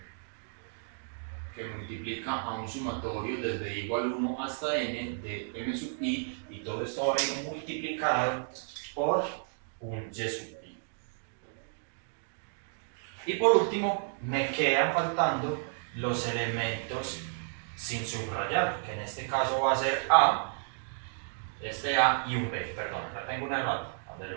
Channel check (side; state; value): left; silent; digital silence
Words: que multiplica a un sumatorio desde i igual 1 hasta n de m sub i, y todo esto va a ir multiplicado por un y sub i. Y por último, me quedan faltando los elementos sin subrayar, que en este caso va a ser a, este a y un b, perdón, acá tengo un error,